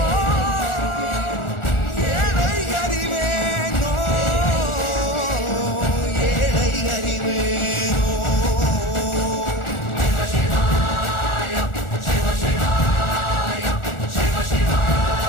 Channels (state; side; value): late; right; 1.4 ms